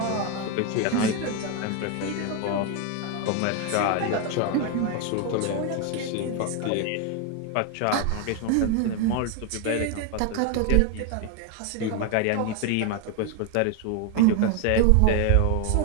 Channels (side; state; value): both; different; correlation 0.01